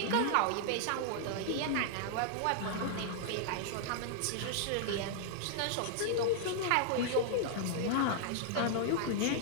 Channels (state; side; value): different; both; correlation -0.01